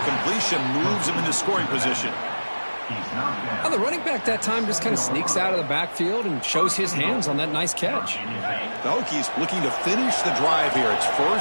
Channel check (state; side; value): inverted; both; correlation -1.00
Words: moves him into scoring position. Well, the running back that time just kind of sneaks out of the backfield and shows his hands on that nice catch. The Hokies looking to finish the drive here. It's